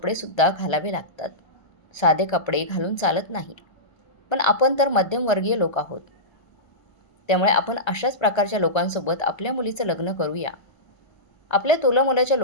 घालावे लागतात. साधे कपडे घालून चालत नाही. पण आपण तर मध्यमवर्गीय लोक आहोत. त्यामुळे आपण अशाच प्रकारच्या लोकांसोबत आपल्या मुलीचं लग्न करूया. आपल्या तोलामोलाच्या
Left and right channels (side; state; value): right; late; 1.3 ms